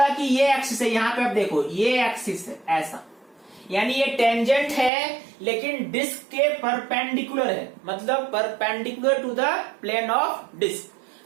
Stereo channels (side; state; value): left; drops out; at 4.9 s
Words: कि ये एक्सिस है, यहां पे आप देखो ये एक्सिस है ऐसा, यानी ये टेंजेंट है लेकिन डिस्क के परपेंडिकुलर है, मतलब perpendicular to the plane of disc.